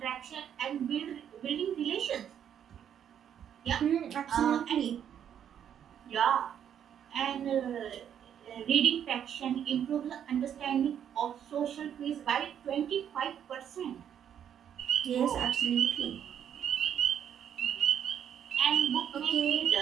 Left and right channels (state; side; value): quieter; left; 9.2 dB